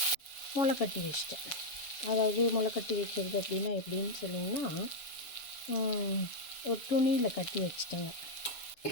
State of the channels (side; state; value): right; late; 6.9 ms